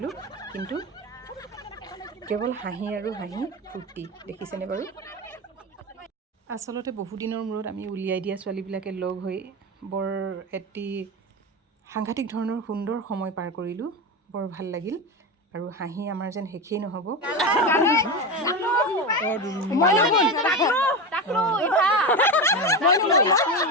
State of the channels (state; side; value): normal; both; correlation 0.19